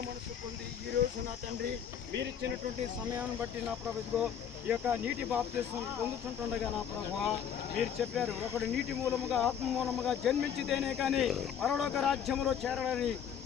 మనసు పొంది ఈ రోజు నా తండ్రి మీరిచ్చినటువంటి సమయాన్ని బట్టి నా ప్రభు ఇదిగో ఈ యొక్క నీటి బాప్తిస్మం పొందుతుంటుండగా నా ప్రభువా మీరు చెప్పారు, ఒకడు నీటి మూలముగా ఆత్మ మూలముగా జన్మించితేనే కానీ పరలోక రాజ్యంలో చేరాలని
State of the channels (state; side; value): quieter; right; 8.4 dB